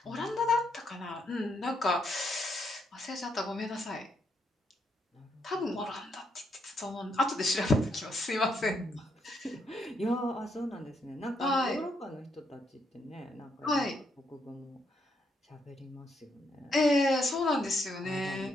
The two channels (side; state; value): both; normal; correlation 0.77